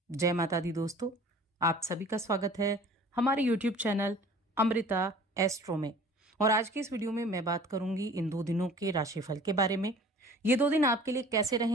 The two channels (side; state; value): both; normal; correlation 0.47